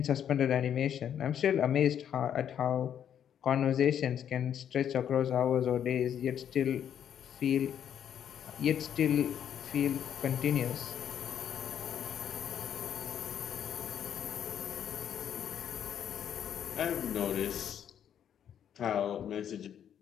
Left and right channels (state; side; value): quieter; right; 9.3 dB